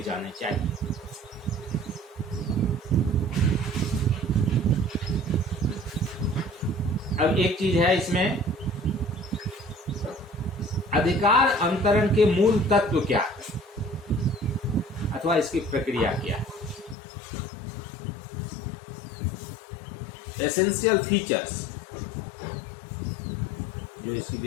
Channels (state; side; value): drops out; right; at 16.9 s